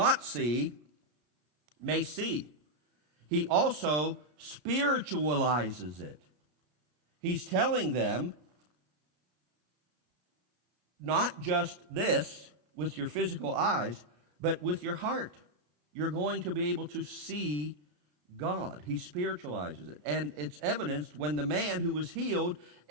see may see. He also spiritualizes it. He's telling them, not just this with your physical eyes, but with your heart. You're going to be able to see God. He spiritualizes it. And it's evidenced when the man who was healed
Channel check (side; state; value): left; late; 33 ms